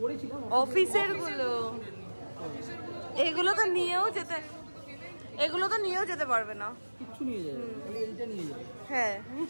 করেছিলাম। অফিসের গুলো, এগুলো তো নিয়েও যেতে, এগুলো তো নিয়েও যেতে পারবে না। কিচ্ছু নিয়ে যাবে, খালি এইটা নিয়ে যাবে। হ্যাঁ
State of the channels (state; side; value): inverted; both; correlation -1.00